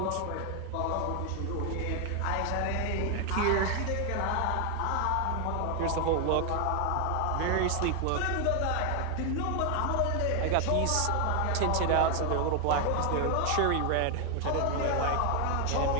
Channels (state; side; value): different; both; correlation 0.00